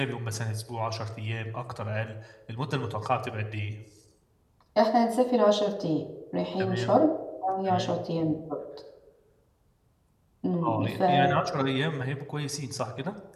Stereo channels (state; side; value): identical; both; correlation 1.00